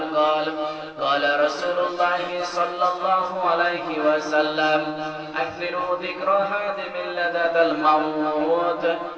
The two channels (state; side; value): identical; both; correlation 1.00